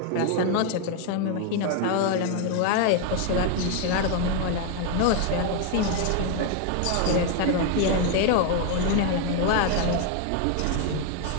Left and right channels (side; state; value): both; different; correlation 0.01